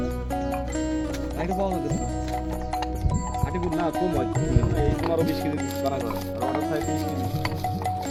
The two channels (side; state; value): both; identical; correlation 1.00